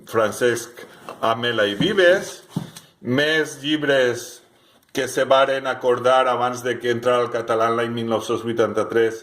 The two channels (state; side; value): identical; both; correlation 1.00